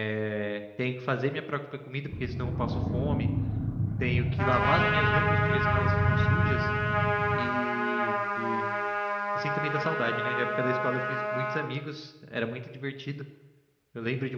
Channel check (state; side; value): identical; both; correlation 1.00